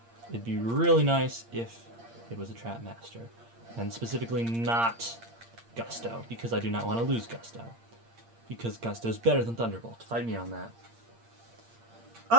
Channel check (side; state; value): left; late; 8.7 ms